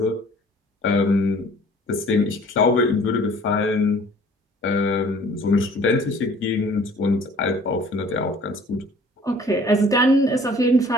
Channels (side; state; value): both; normal; correlation 0.52